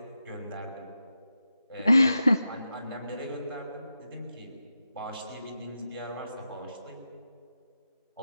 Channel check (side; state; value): both; inverted; correlation -0.90